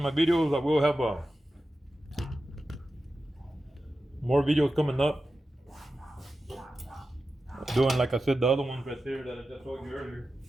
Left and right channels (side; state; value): both; normal; correlation 0.92